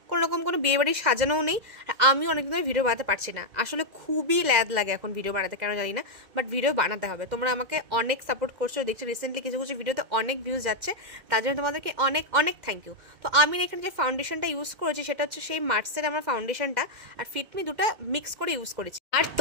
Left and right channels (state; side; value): late; left; 2.0 ms